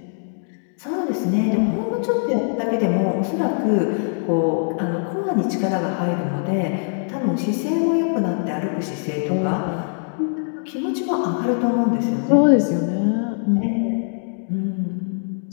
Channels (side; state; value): right; silent; digital silence